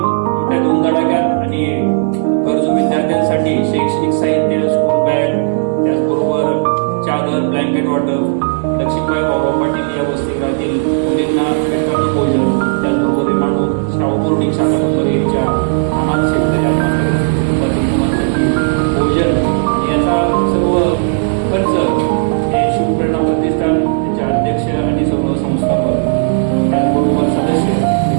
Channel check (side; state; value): left; silent; digital silence